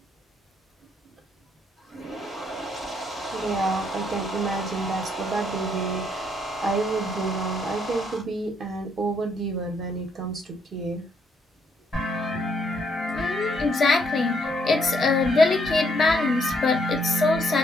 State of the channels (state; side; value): normal; both; correlation 0.71